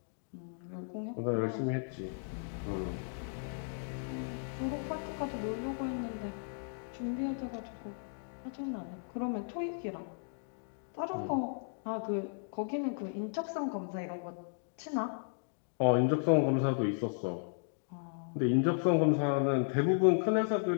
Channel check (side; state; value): right; silent; digital silence